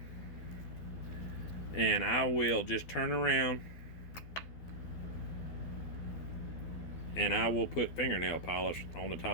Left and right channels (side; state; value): right; late; 12 ms